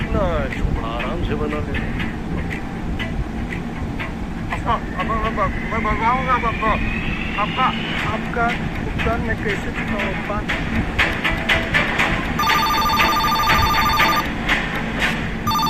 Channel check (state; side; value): identical; both; correlation 1.00